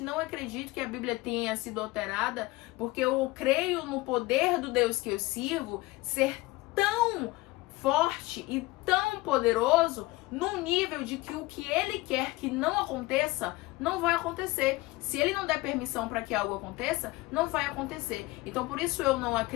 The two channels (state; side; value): quieter; right; 20.6 dB